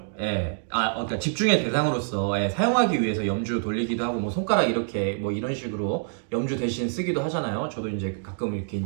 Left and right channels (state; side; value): silent; left; digital silence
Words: 그러니까 집중의 대상으로서 사용하기 위해서 염주 돌리기도 하고 뭐 손가락 이렇게 뭐 이런 식으로 염주 대신 쓰기도 하잖아요. 저도 이제 가끔 이렇게